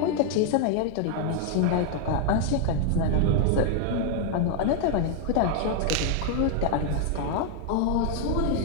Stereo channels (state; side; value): different; both; correlation 0.00